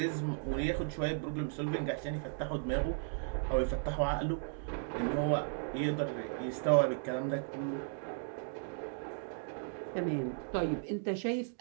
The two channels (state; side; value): silent; left; digital silence